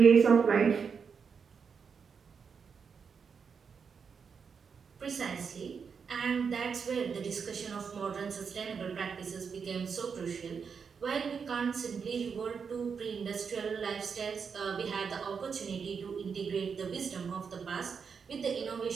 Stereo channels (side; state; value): left; quieter; 6.1 dB